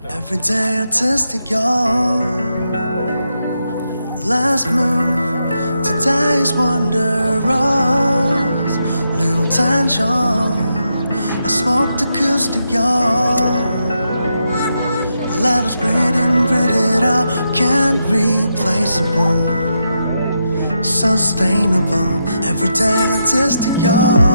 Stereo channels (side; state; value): both; inverted; correlation -0.83